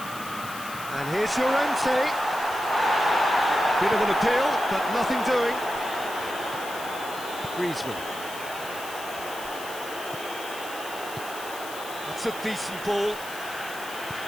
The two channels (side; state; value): left; noise; hiss, 13 dB below the sound